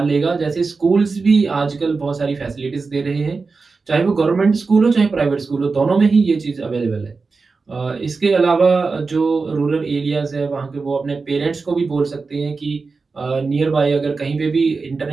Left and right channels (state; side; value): quieter; left; 4.3 dB